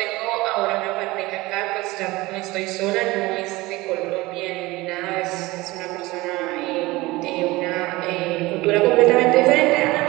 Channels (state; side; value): quieter; left; 20.7 dB